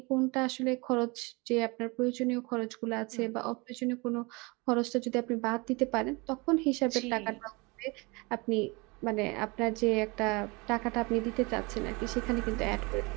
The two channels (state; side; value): quieter; left; 26.6 dB